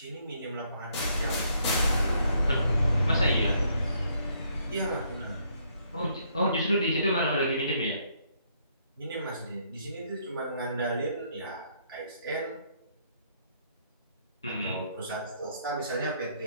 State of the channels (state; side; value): inverted; both; correlation -0.70